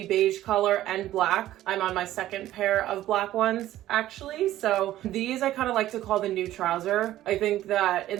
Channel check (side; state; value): left; quieter; 14.0 dB